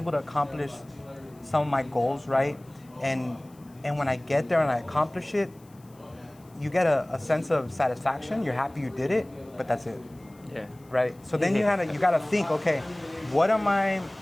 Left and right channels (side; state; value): left; noise; hiss, 30 dB below the sound